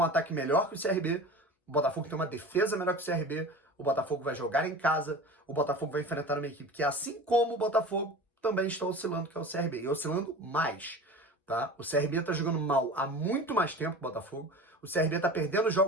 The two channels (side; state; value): both; normal; correlation 0.36